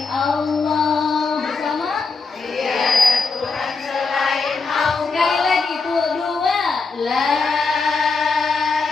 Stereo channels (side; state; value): right; quieter; 4.4 dB